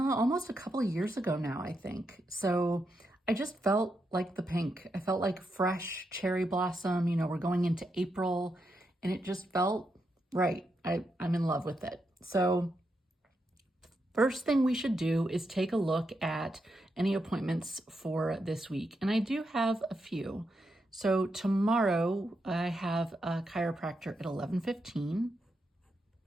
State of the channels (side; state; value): both; normal; correlation 0.83